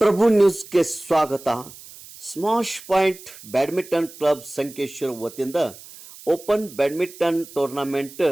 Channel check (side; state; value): right; noise; hiss, 18 dB below the sound